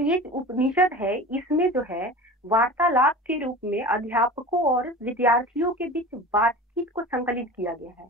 ये उपनिषद है इसमें जो है वार्तालाप के रूप में अध्यापकों और विद्यार्थियों के बीच बातचीत को संकलित किया गया है।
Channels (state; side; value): normal; both; correlation 0.34